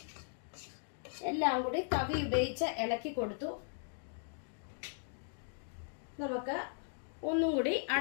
എല്ലാം കൂടി തവി ഉപയോഗിച്ച് ഇളക്കി കൊടുത്തു. നമുക്ക് ഒന്നും കൂടി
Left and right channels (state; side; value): silent; right; digital silence